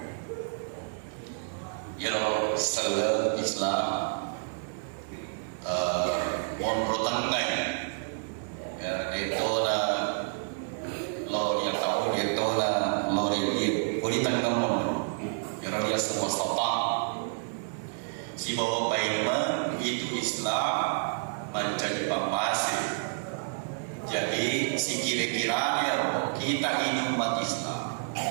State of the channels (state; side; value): silent; left; digital silence